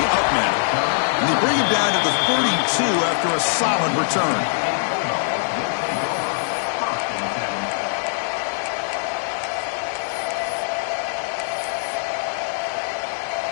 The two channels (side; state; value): right; silent; digital silence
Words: up men. And they bring him down to the 32 after a solid return.